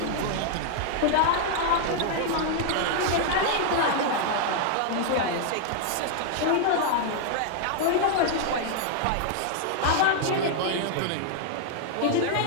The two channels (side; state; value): both; different; correlation 0.00